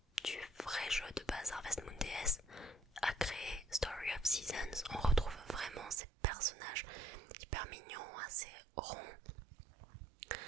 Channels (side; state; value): left; drops out; at 6.0 s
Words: du vrai jeu de base Harvest Moon DS a créé Story of Seasons. On retrouve vraiment ces personnages hyper mignons, assez ronds,